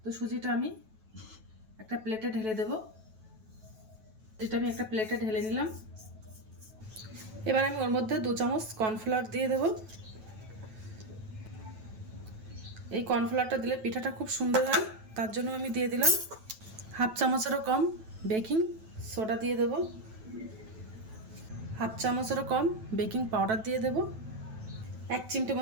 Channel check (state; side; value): late; left; 9.2 ms